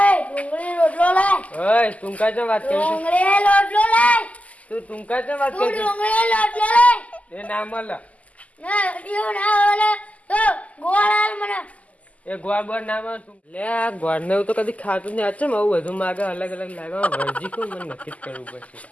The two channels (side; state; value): right; late; 0.071 ms